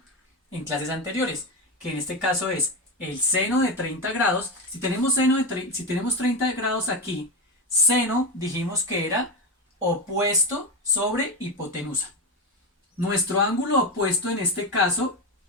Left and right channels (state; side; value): normal; both; correlation 0.15